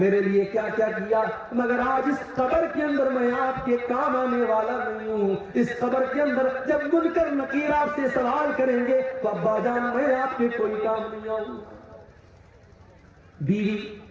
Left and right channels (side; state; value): both; identical; correlation 1.00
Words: لیے کیا کیا کیا، مگر آج اس قبر کے اندر میں آپ کے کام آنے والا نہیں ہوں۔ اس قبر کے اندر جب منکر نکیر آپ سے سوال کریں گے تو ابا جان میں آپ کے کوئی کام نہیں آؤں۔ بیوی،